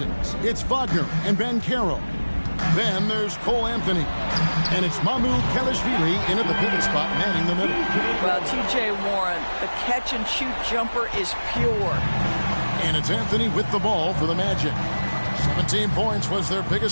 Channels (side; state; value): both; inverted; correlation -1.00